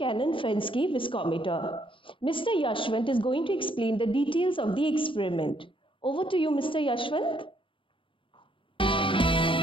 viscometer. Mr. Yashwant is going to explain the details of the experiment. Over to you, Mr. Yashwant.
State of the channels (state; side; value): late; right; 0.25 ms